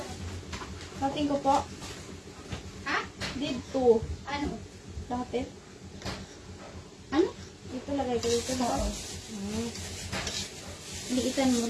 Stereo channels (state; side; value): identical; both; correlation 1.00